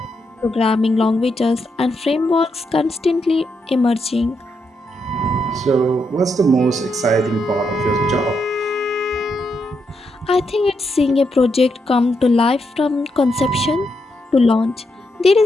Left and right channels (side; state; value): both; normal; correlation 0.81